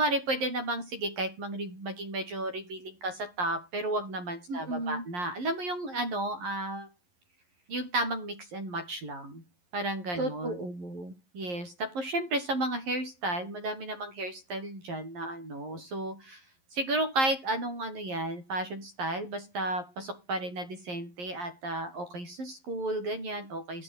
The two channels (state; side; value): late; left; 11 ms